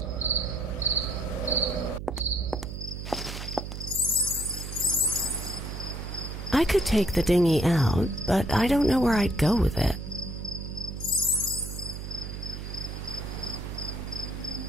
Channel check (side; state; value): right; noise; hum, 7 dB below the sound